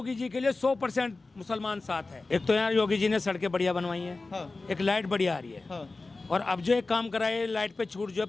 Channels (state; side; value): quieter; right; 3.5 dB